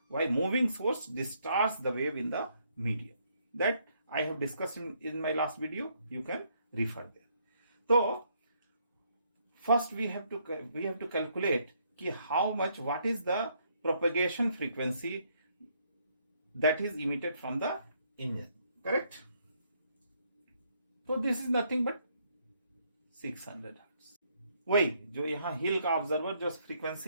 why moving source distorts the wave in the medium. That I have discussed in my last video. You can refer there. So first we have to calculate ki how much, what is the propagation frequency that is emitted from the engine. Correct? So this is nothing but 600 hertz. वही जो यहाँ हिल का observer जो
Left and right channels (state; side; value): inverted; both; correlation -0.71